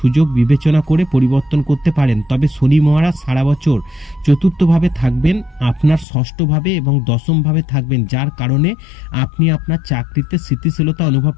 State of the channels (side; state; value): right; drops out; at 6.1 s